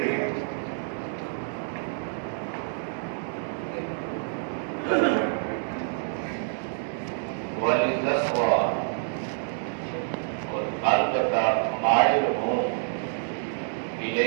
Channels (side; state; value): left; silent; 58 dB below the other